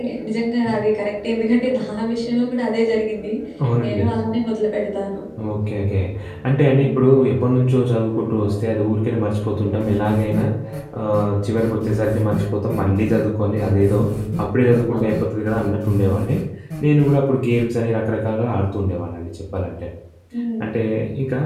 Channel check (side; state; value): both; identical; correlation 1.00